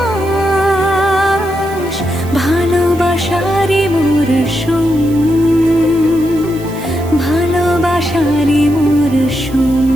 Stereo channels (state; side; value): noise; right; hiss, 21 dB below the sound